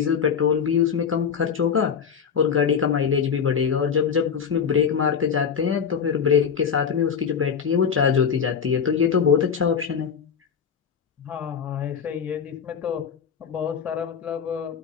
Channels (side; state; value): right; quieter; 7.0 dB